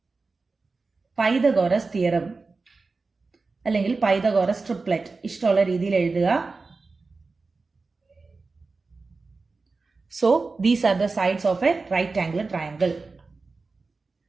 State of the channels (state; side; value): quieter; left; 4.0 dB